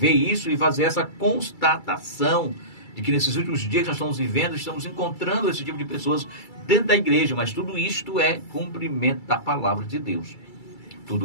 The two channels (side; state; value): right; late; 2.3 ms